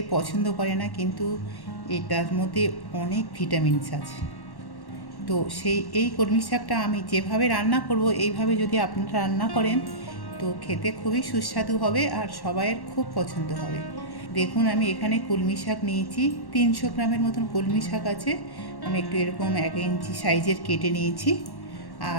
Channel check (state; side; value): late; right; 1.1 ms